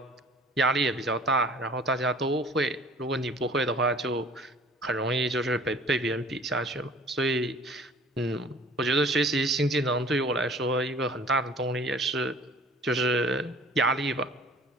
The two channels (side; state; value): both; normal; correlation 0.49